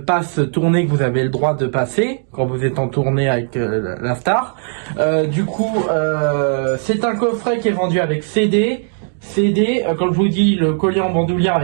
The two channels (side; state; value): left; silent; digital silence